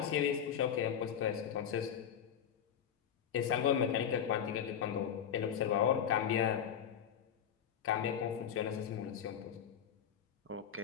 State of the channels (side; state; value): right; quieter; 8.7 dB